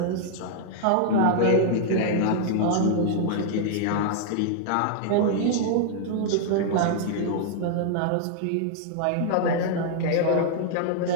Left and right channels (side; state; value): both; different; correlation -0.01